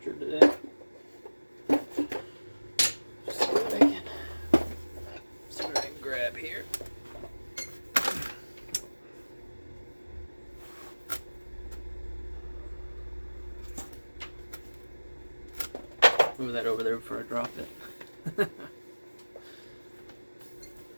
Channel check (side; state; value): both; inverted; correlation -1.00